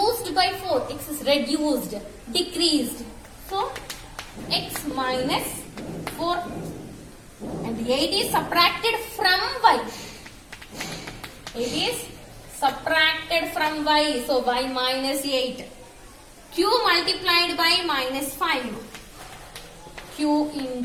by 4. X is reduced, decreased. So X minus 4. And 8 is subtracted from Y. 8 is subtracted from Y. So Y minus 8. Q multiplied by minus 5. Q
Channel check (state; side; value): identical; both; correlation 1.00